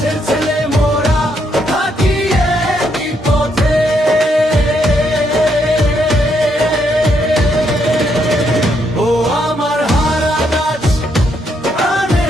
ছেলে মোরা, থাকি একই পথে। ও আমার হারা গাছ,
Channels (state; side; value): normal; both; correlation 0.76